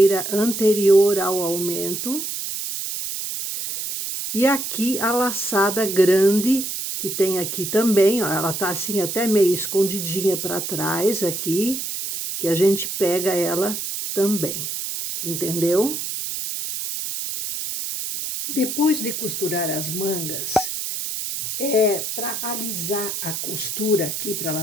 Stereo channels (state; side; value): noise; right; hiss, 4 dB below the sound